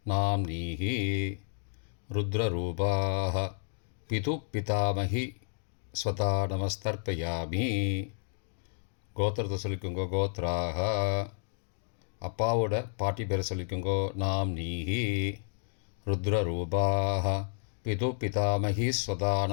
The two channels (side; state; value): right; silent; digital silence